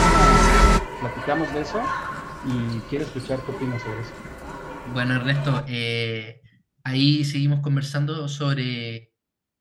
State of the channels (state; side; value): identical; both; correlation 1.00